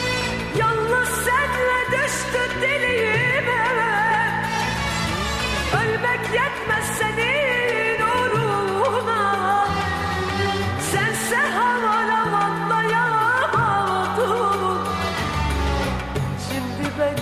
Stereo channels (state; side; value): noise; left; rumble, 26 dB below the sound